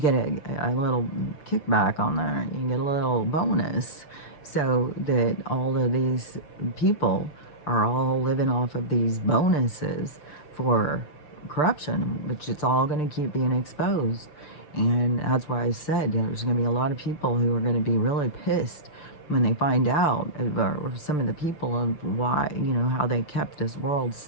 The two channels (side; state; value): right; late; 6.7 ms